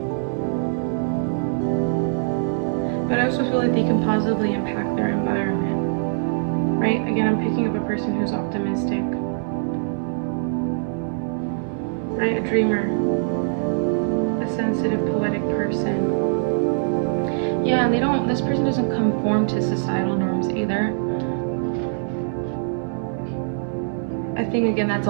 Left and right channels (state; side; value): silent; left; 63 dB below the other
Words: But I also feel like they can positively impact their environment, right? Again, I'm picking up a person who's optimistic, right? A dreamer, a sensitive, poetic person. Yeah, this person doesn't conform to societal norms either. I think, again, that's